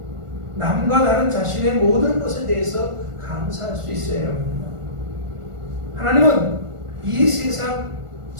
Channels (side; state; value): left; late; 1.4 ms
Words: 남과 다른 자신의 모든 것에 대해서 감사할 수 있어야 합니다. 하나님은 이 세상